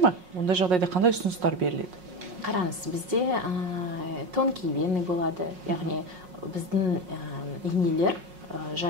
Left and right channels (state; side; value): late; left; 5.5 ms